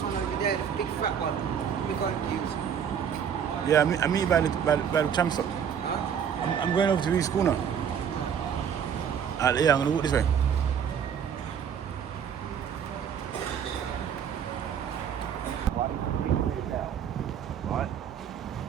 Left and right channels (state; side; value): quieter; left; 8.0 dB